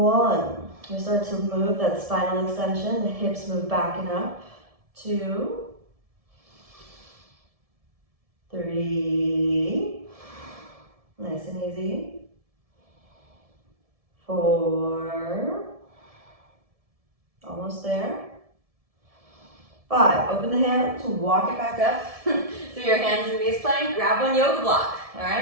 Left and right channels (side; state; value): left; late; 1.7 ms